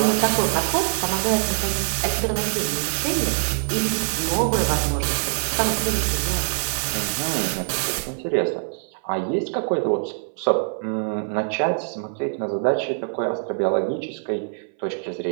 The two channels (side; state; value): left; silent; 60 dB below the other